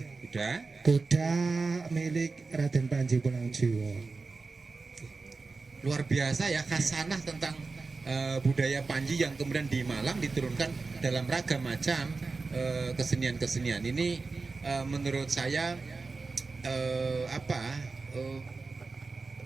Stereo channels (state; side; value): quieter; left; 4.0 dB